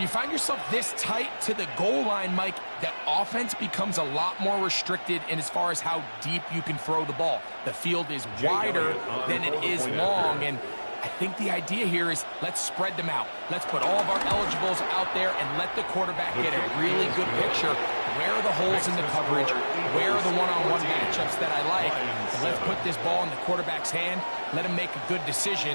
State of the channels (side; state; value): both; inverted; correlation -1.00